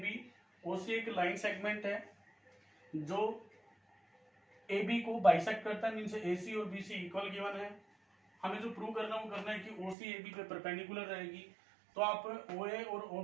ओसी एक लाइन सेगमेंट है जो ए बी को बाइसेक्ट करता है, मीन्स ए सी और बी सी इक्वल गिवन है। हमें जो प्रूव करना वो करना है कि ओ सी ए बी पे परपेंडिकुलर रहेगी। तो आप ओ ए और ओ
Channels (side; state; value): left; drops out; at 10.0 s